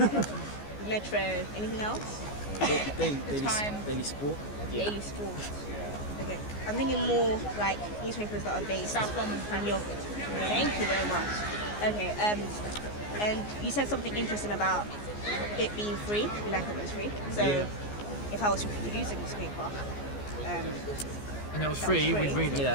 Metro. Anything else? Daily Sport. Daily Sport. Okay. I'm thinking more like newspapers that are based in your. Thank you very much. Okay. And you said something interesting about it being free. We like it when it's free. So, if I was to produce a newspaper, And it was that free, was we'd read it. Yeah.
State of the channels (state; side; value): late; right; 14 ms